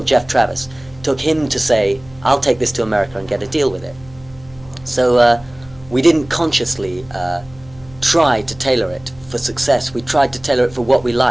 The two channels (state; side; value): noise; left; hum, 23 dB below the sound